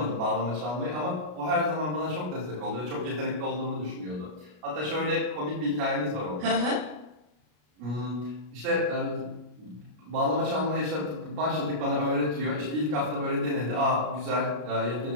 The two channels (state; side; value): late; left; 33 ms